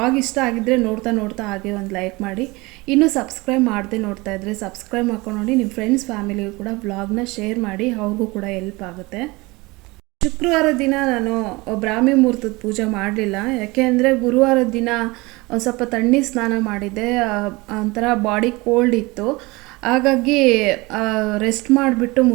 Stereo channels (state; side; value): quieter; left; 23.5 dB